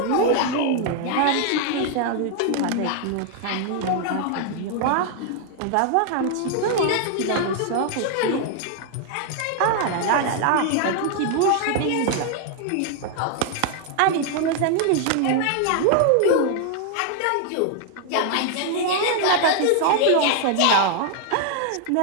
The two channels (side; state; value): both; different; correlation 0.00